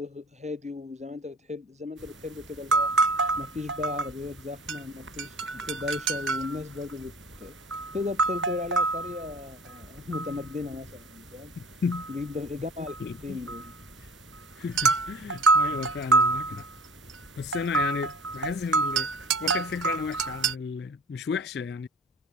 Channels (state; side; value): normal; both; correlation 0.44